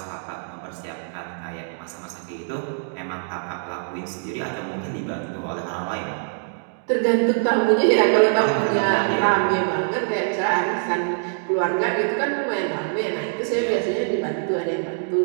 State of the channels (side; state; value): left; silent; digital silence